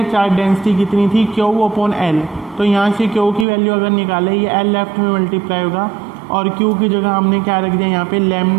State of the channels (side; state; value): left; drops out; at 3.5 s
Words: चार्ज डेंसिटी कितनी थी, Q अपॉन L, तो यहाँ से Q की वैल्यू अगर निकाले ये L लेफ्ट में मल्टीप्लाई होगा और Q की जगह हमने क्या रख दिया यहाँ पे